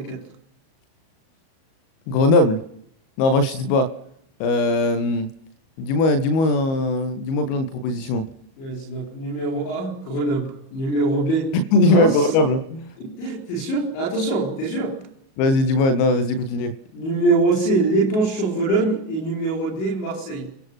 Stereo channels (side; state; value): right; late; 37 ms